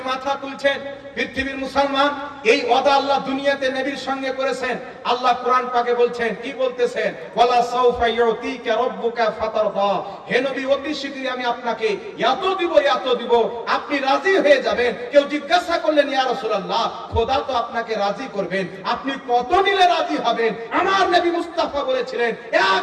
মাথা তুলছেন। পৃথিবীর মুসলমান, এই ওয়াদা আল্লাহ দুনিয়াতে নবীর সঙ্গে করেছেন। আল্লাহ কোরআন পাকে বলছেন, কি বলতেছেন? ওয়ালা সাউফা ইউতিকা রাব্বুকা ফাতারদা, হে নবী অতি শীঘ্রই আমি আপনাকে এত দিব, এত দিব, আপনি রাজি হয়ে যাবেন। কেউ জিজ্ঞাসা করলেন ইয়া রাসূলুল্লাহ, খোদা তো আপনাকে রাজি করবেন, আপনি কত নিলে রাজি হবেন? আমার নবী মুস্তাফা বলেছিলেন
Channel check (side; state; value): both; identical; correlation 1.00